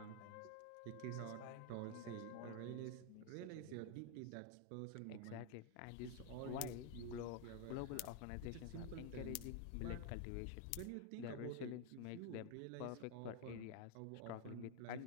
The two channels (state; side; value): different; both; correlation 0.01